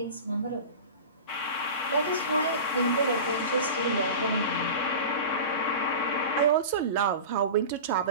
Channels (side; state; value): both; inverted; correlation -0.32